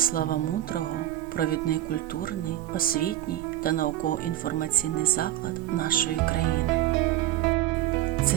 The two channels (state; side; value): quieter; left; 14.2 dB